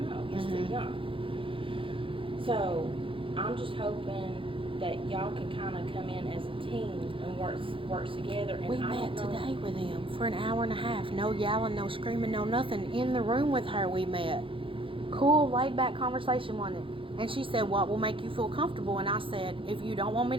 know. He's too young. So I'm just hoping that y'all can kind of come in as a team and work together. And We met today with him for an hour and a half. No yelling, no screaming, no nothing. In the room with her, we met. Cool, laid back conversation, wasn't it? And she said, what will make you feel comfortable? And I said, if you don't want me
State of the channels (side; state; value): left; late; 0.25 ms